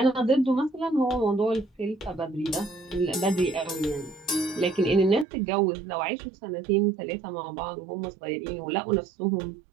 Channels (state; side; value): drops out; left; at 5.2 s